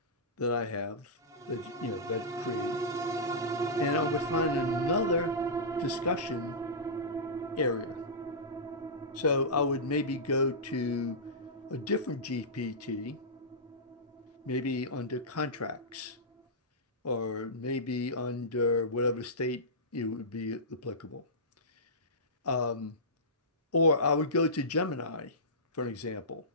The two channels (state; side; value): normal; both; correlation -0.17